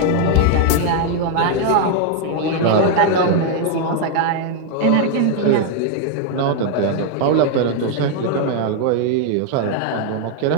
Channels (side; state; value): both; different; correlation 0.00